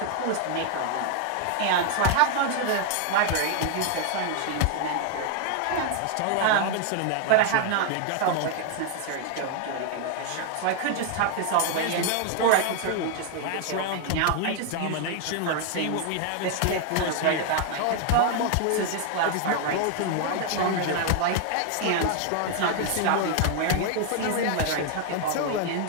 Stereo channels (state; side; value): different; both; correlation 0.00